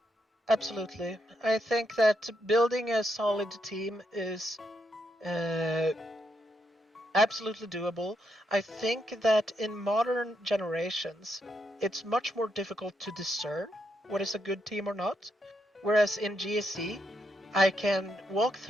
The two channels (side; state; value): both; normal; correlation 0.80